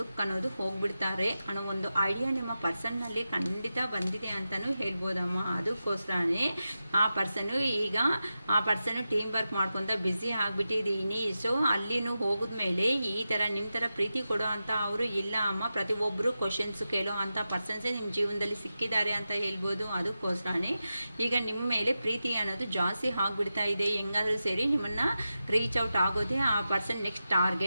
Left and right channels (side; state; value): both; inverted; correlation -0.91